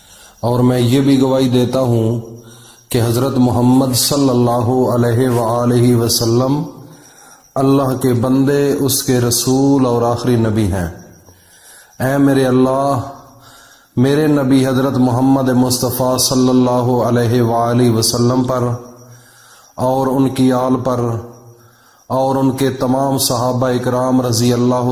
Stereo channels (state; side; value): identical; both; correlation 1.00